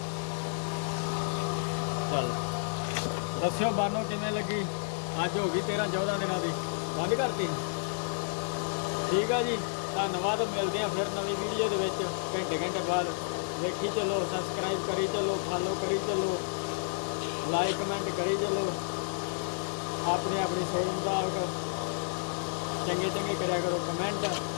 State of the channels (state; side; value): silent; right; digital silence